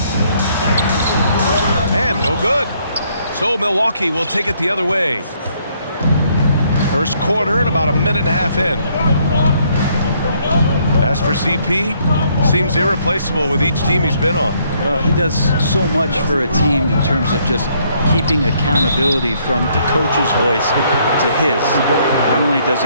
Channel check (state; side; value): inverted; both; correlation -0.68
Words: And no good. So Milwaukee will take it the other way. First quarter and about a minute and a half in. As for CP, seems irreplaceable with each team he's been on. Well, he does so much for a team in terms of just keeping accountability from the coach's voice to his. Not only does